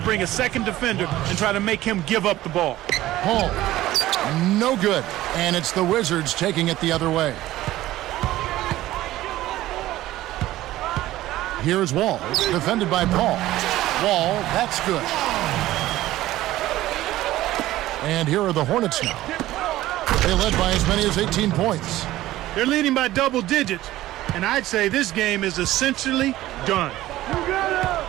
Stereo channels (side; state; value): left; quieter; 15.6 dB